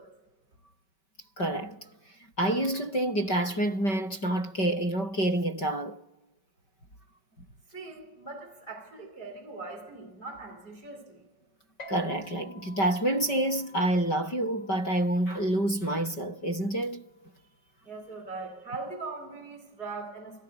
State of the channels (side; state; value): right; late; 5.2 ms